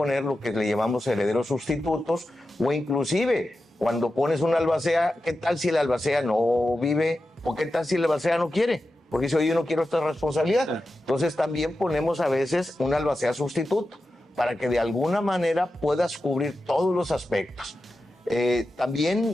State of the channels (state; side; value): normal; both; correlation 0.92